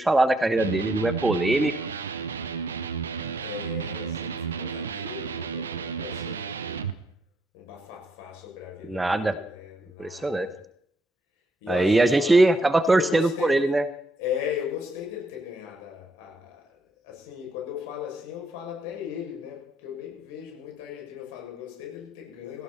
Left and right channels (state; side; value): normal; both; correlation 0.74